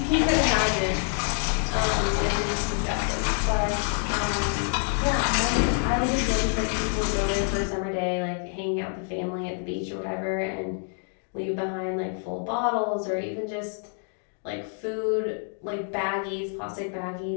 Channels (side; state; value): right; silent; 60 dB below the other